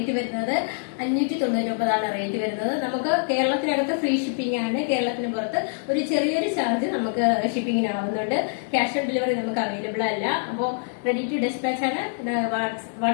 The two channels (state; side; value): silent; right; digital silence